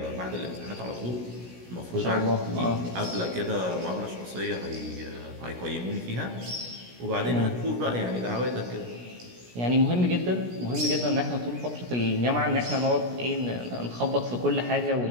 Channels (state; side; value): late; left; 17 ms